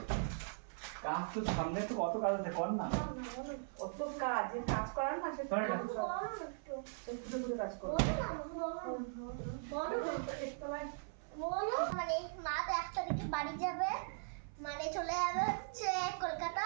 কাজ তো সামনে তো কত কাজ আছে, কর না অত কাজ, যে কাজ করার না সে কাজ করো। বলো মানে মা তো 1 তারিখে বাড়ি যাবে, মানে চলে যাবে হচ্ছে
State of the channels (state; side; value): silent; left; 51 dB below the other